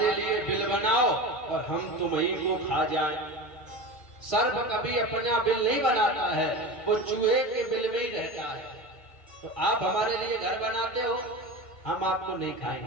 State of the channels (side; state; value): right; late; 1.5 ms